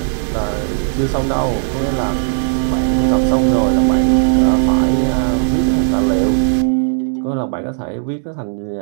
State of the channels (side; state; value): left; silent; digital silence